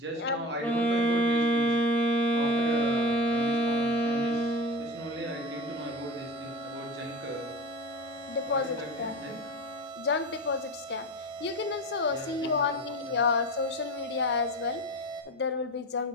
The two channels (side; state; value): both; normal; correlation 0.30